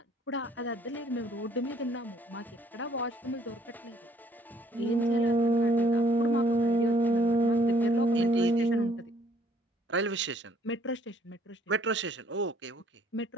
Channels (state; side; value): normal; both; correlation 0.63